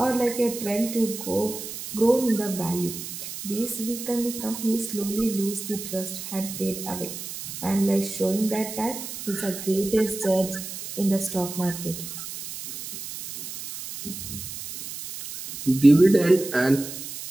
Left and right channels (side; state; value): right; noise; hiss, 9 dB below the sound